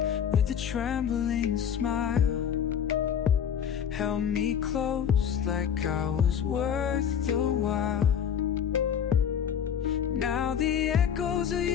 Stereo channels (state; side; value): quieter; right; 8.3 dB